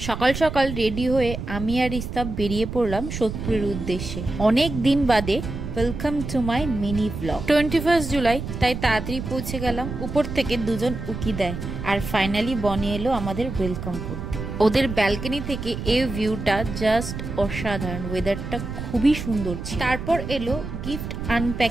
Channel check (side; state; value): right; noise; rumble, 7 dB below the sound